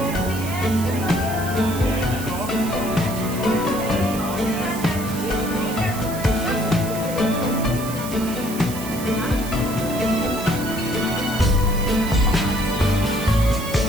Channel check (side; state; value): right; noise; hiss, 11 dB below the sound